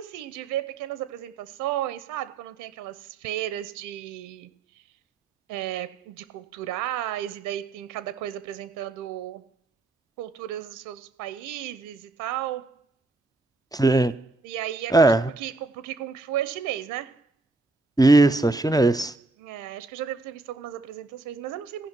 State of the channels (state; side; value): quieter; left; 3.2 dB